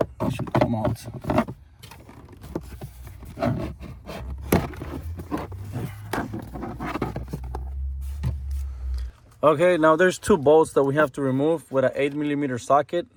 come out. Okay, now there's 2 bolts that we have to remove with an 8mm socket.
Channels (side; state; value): both; identical; correlation 1.00